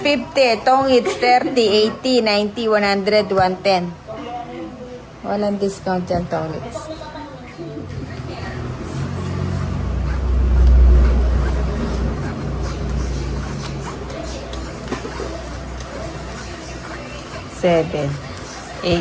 50, tong hits 30, 80, 90, 100, 110. Walang discount yan, tong hits. Seven,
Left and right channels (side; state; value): both; identical; correlation 1.00